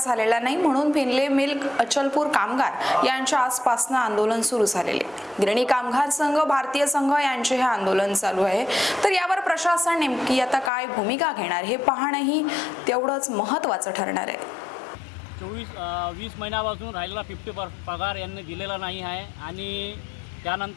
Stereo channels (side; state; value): right; drops out; at 10.7 s